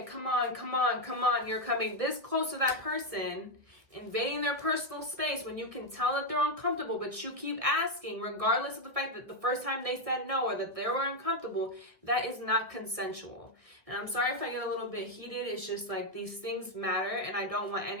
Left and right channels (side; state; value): left; late; 1.7 ms